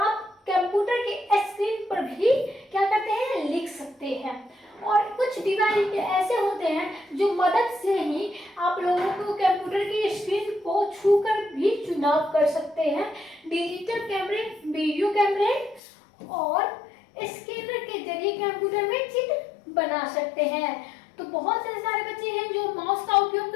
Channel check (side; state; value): right; drops out; at 15.8 s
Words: कंप्यूटर के स्क्रीन पर भी क्या करते हैं, लिख सकते हैं। और कुछ डिवाइस ऐसे होते हैं जो मदद से ही आप लोगों को कंप्यूटर की स्क्रीन को छूकर भी चुनाव कर सकते हैं। डिजिटल कैमरे, वीडियो कैमरे और स्कैनर के जरिए कंप्यूटर में चित्र बना सकते हैं। तो बहुत से सारे बच्चे हैं जो माउस का उपयोग